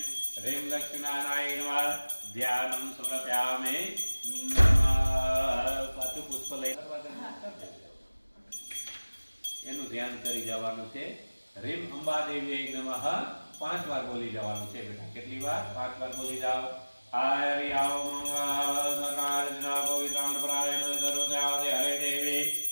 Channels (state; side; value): inverted; both; correlation -1.00